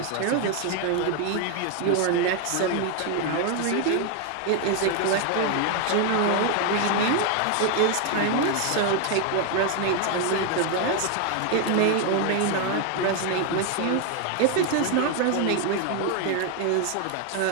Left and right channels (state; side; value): different; both; correlation 0.01